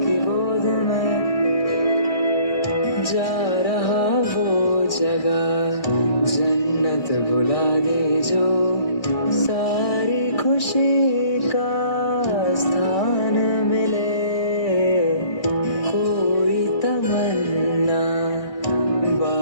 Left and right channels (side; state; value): right; late; 1.6 ms